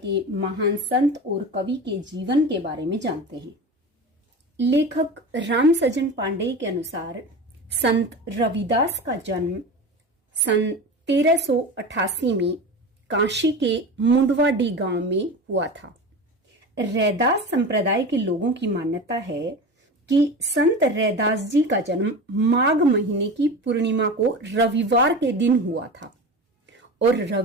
महान संत और कवि के जीवन के बारे में जानते हैं। लेखक राम सजन पांडे के अनुसार संत रविदास का जन्म सन 1388 में काशी के मुंडवाडी गांव में हुआ था। रैदास संप्रदाय के लोगों की मान्यता है कि संत रैदास जी का जन्म माघ महीने की पूर्णिमा को रविवार के दिन हुआ था और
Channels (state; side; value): normal; both; correlation 0.29